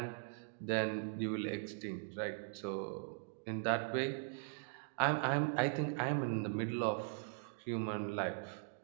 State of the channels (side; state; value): left; silent; digital silence